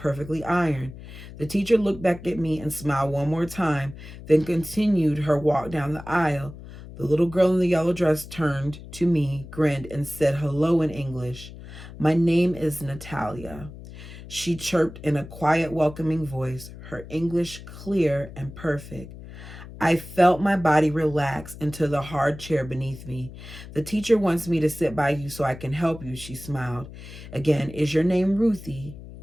ironed. The teacher looked back at me and smiled one more time, then continued her walk down the aisle. The little girl in the yellow dress turned to me, grinned, and said hello in English. My name is Natalia. She chirped in a quiet, welcoming voice, her English clear and perfect. I felt my body relax into the hard chair beneath me. The teacher wants me to sit by you so I can help you, she smiled. Again, is your name Ruthie?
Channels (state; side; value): noise; left; hum, 15 dB below the sound